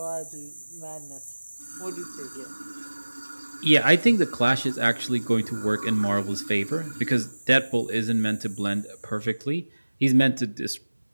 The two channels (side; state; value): both; inverted; correlation -1.00